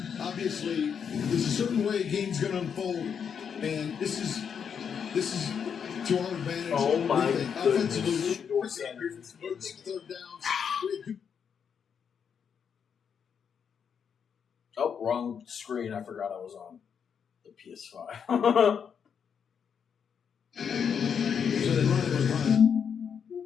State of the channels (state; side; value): quieter; right; 7.2 dB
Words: Obviously, there's a certain way a game's going to unfold, and this is to our advantage. Oh my goodness. Third downs. Oh, wrong screen. I forgot I was on the PS5. So they run it with Hunt.